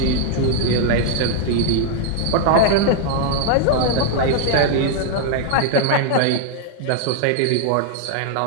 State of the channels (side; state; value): both; different; correlation 0.00